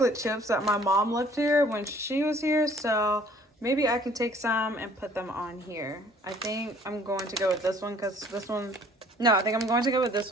chips that my mom left here when she was here. So maybe I can take some and put them on here. I think I'm going to go with this one because this one, no, I think I'm going to go with this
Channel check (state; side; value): normal; both; correlation 0.56